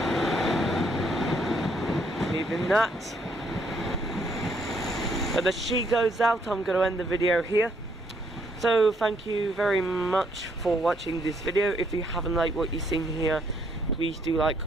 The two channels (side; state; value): both; normal; correlation 0.70